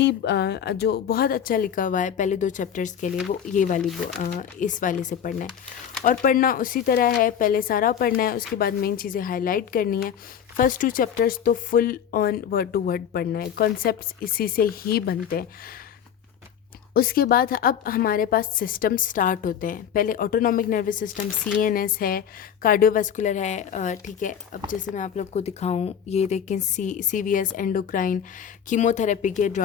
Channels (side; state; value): right; quieter; 8.7 dB